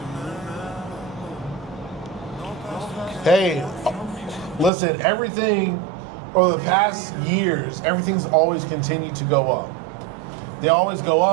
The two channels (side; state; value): left; drops out; at 4.7 s